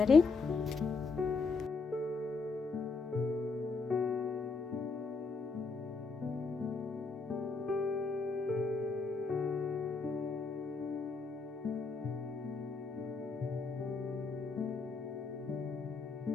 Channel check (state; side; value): quieter; right; 4.3 dB